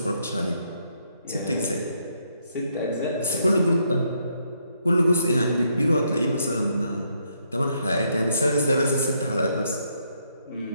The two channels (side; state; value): both; inverted; correlation -0.74